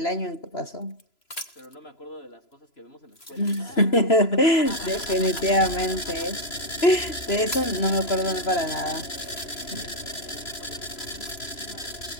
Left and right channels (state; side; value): late; right; 3.0 ms